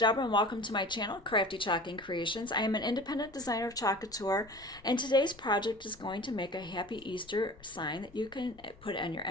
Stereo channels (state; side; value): noise; left; rumble, 23 dB below the sound